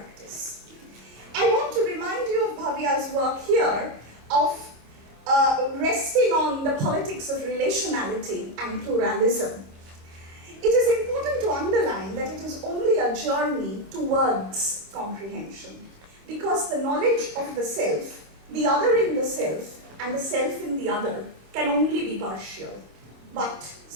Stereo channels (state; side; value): late; left; 25 ms